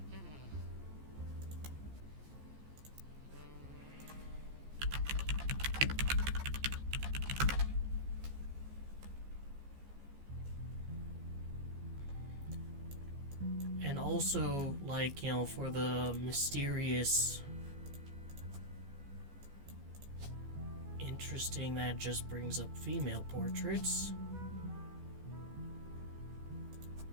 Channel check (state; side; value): late; left; 14 ms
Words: And also, like, for the mysterious, interesting that just brings up female portraits.